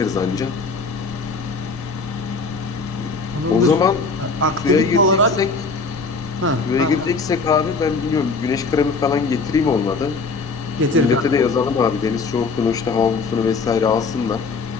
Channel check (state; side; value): quieter; right; 4.2 dB